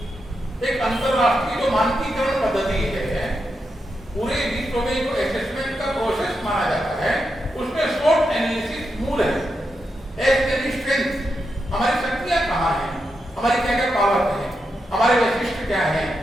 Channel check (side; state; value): both; normal; correlation 0.86